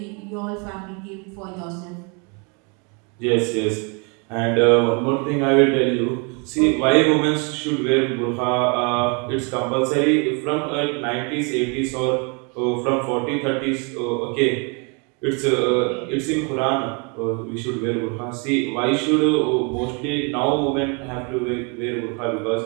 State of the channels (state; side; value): quieter; left; 33.9 dB